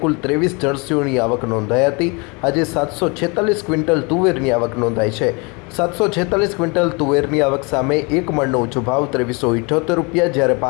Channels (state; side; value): quieter; right; 29.9 dB